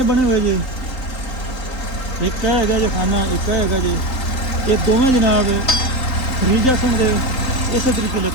ਬਣੇ ਹੋਏ ਜੇ। ਇੱਕ ਇਹ ਹੈਗਾ ਜੀ ਖਾਨਾ, ਇੱਕ ਇਹ ਹੈਗਾ ਜੀ। ਇਹ ਦੋਵੇਂ ਜਨਾਬ ਖਰੀਜਾ ਸਿੰਘ ਦੇ ਇਸੇ ਤਰੀਕੇ ਨਾਲ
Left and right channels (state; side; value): late; right; 3.8 ms